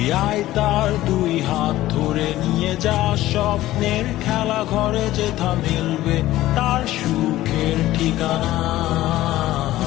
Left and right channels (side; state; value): right; quieter; 15.5 dB